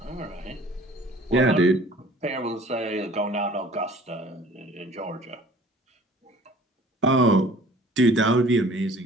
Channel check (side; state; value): both; normal; correlation 0.50